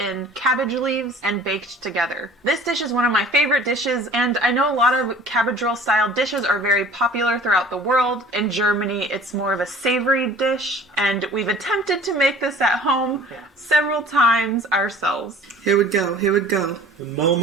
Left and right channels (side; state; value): both; normal; correlation 0.47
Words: cabbage leaves and baked together. This dish is one of my favorite dishes, and I know a lot of cabbage roll style dishes are very popular throughout the world. In Germany, it's more of a savory dish, and we've attempted to make this at home several times ourselves. Here we go, here we go. The